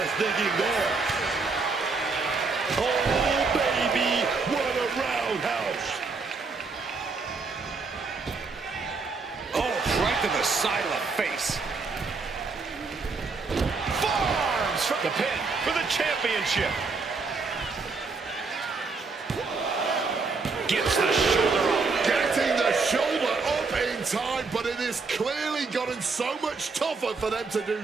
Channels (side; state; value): left; quieter; 4.3 dB